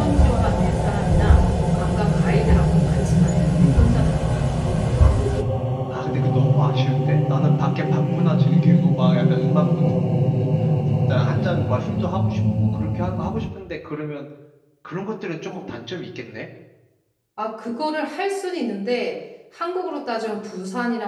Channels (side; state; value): both; identical; correlation 1.00